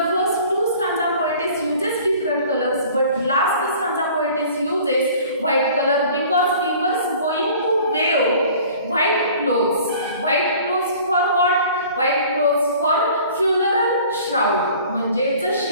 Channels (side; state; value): both; inverted; correlation -0.48